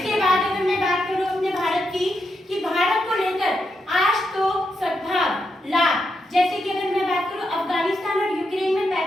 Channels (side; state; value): both; normal; correlation 0.83